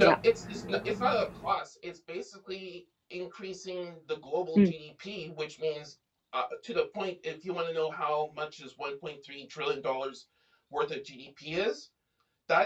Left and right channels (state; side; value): identical; both; correlation 1.00